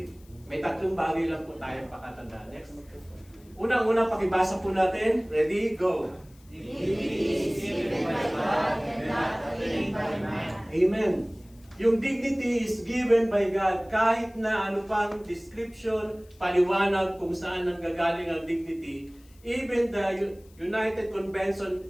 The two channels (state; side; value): noise; left; hiss, 29 dB below the sound